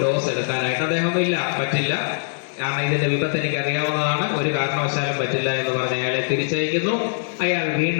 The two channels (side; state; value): right; silent; 64 dB below the other